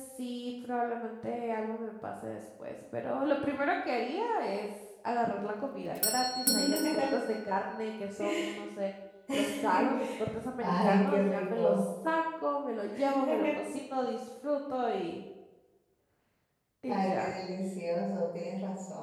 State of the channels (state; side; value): identical; both; correlation 1.00